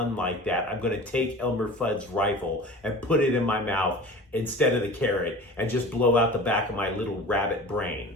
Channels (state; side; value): normal; both; correlation 0.38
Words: like that, I'm going to take Elmer Fudd's rifle and put it in my mouth instead of the carrot and just blow out the back of my little rabbit